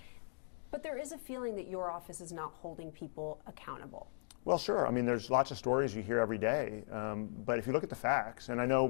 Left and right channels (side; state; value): right; silent; digital silence